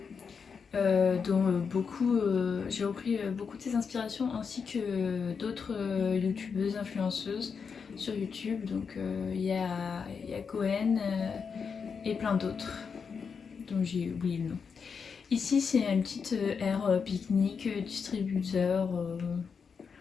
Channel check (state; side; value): quieter; right; 5.9 dB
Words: dont j'ai repris beaucoup de ses inspirations, ainsi que d'autres youtubeuses influenceuses sur YouTube. Donc il y a Cohen et plein d'autres dont j'ai oublié le nom. Ici c'est une petite aire pique-nique, distributeur,